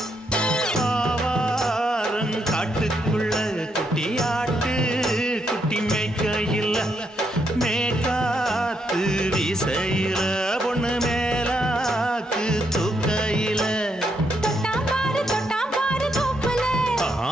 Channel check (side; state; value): both; normal; correlation 0.78